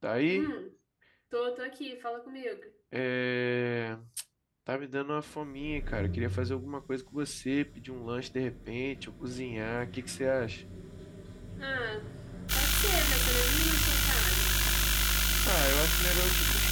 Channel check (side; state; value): both; identical; correlation 1.00